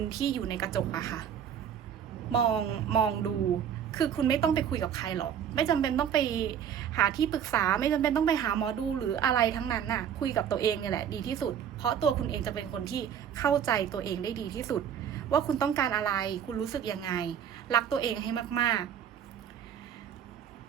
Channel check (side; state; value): left; quieter; 8.7 dB